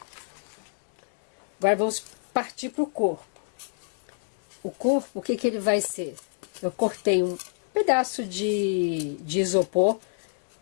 Agora vamos partir para o corpo. O corpo, o que que ele vai ser? Eu cortei um pedaço de isopor,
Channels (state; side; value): silent; right; 60 dB below the other